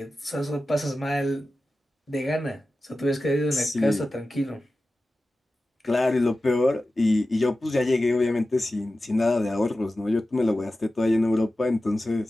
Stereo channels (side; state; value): both; normal; correlation 0.94